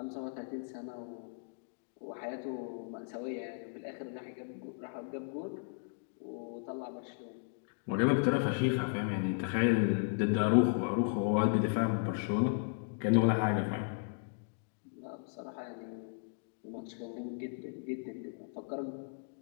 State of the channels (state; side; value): silent; right; digital silence